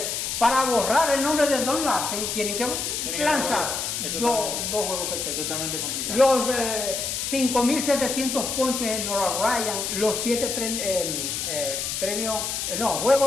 para borrar el nombre de Don Larsen tienen que lanzar dos juegos perfectos. Totalmente complicado. Los 5.700 ponches en Nolan Ryan, los 7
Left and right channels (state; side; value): noise; left; hiss, 2 dB below the sound